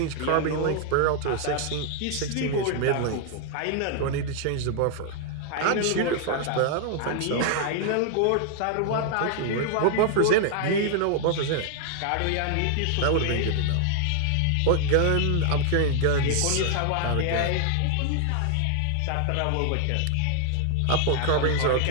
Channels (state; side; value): different; both; correlation 0.00